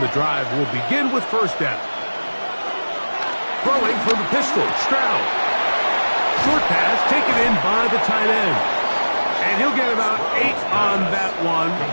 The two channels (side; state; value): both; inverted; correlation -1.00